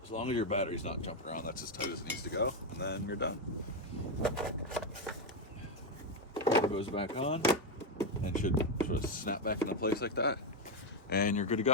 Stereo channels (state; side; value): normal; both; correlation 0.06